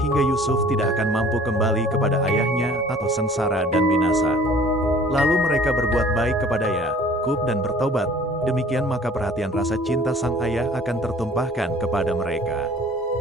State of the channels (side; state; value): both; normal; correlation 0.50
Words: Yusuf tidak akan mampu kembali kepada ayahnya atau sengsara dan binasa. Lalu mereka berbuat baik kepada Yakub dan bertobat. Demikian maka perhatian rasa cinta sang ayah akan tertumpahkan kepada mereka.